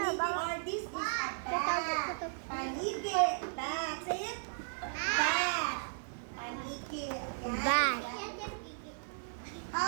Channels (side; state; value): left; silent; 54 dB below the other